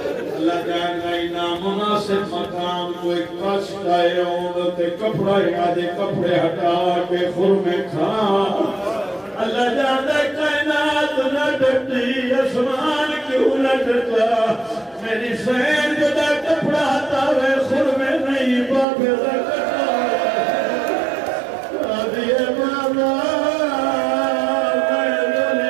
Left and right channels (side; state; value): left; drops out; at 18.9 s